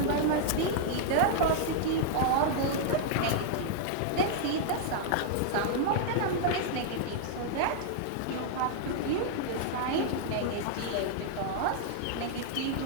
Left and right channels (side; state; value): both; different; correlation -0.01